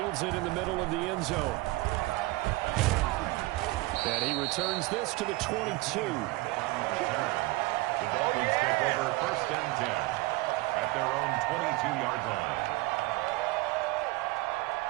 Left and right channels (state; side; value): quieter; left; 21.3 dB